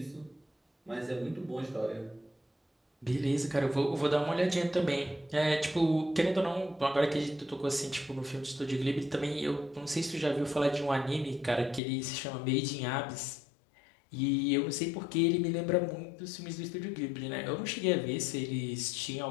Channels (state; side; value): drops out; right; at 11.8 s